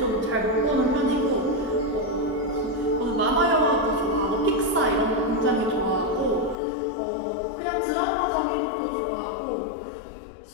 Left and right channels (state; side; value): drops out; right; at 6.6 s